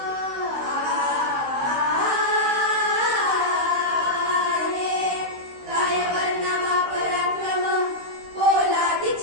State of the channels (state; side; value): late; left; 15 ms